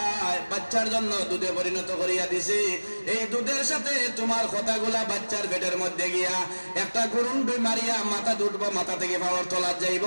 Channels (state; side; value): inverted; both; correlation -1.00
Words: বাচ্চার জন্য দুধে পরিণত করিয়া দিছি। এই দুধের সাথে তোমার কথাগুলা বাচ্চার পেটের মধ্যে গিয়া একটা গুরুন্ডুই মারিয়া মাথা দুটবো, মাথা থেকে পাওয়ার তলা যাইব,